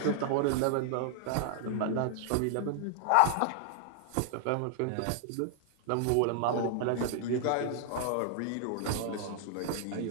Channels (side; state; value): both; different; correlation -0.01